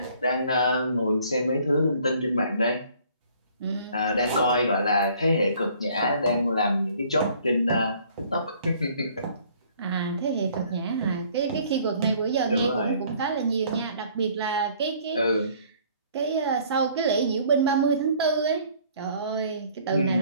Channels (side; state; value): both; inverted; correlation -0.57